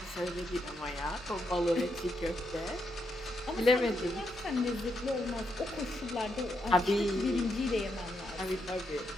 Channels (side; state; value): both; normal; correlation 0.80